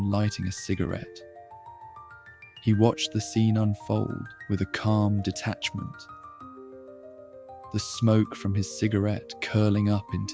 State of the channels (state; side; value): identical; both; correlation 1.00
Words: lighting a cigarette. He watched the scene unfold with a calm detachment, the smoke from his cigarette curling up